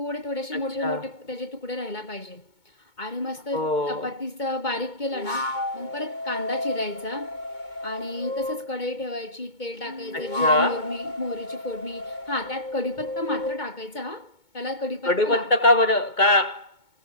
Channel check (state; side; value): late; right; 2.2 ms